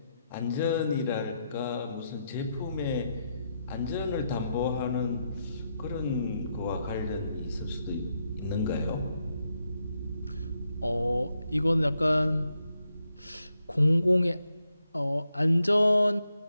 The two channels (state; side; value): inverted; both; correlation -0.82